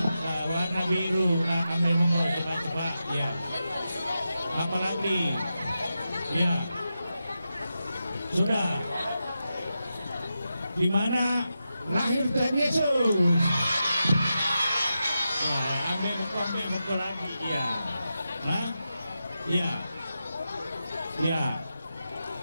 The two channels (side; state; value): both; inverted; correlation -0.89